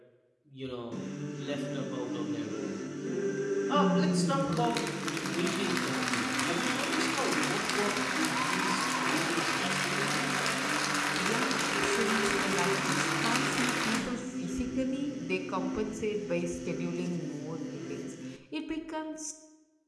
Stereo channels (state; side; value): identical; both; correlation 1.00